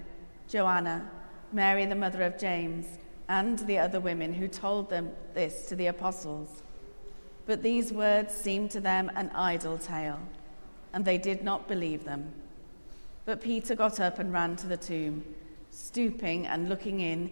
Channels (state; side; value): inverted; both; correlation -1.00